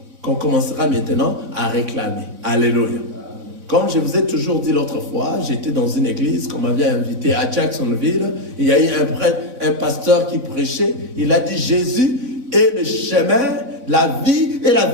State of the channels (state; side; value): late; left; 4.0 ms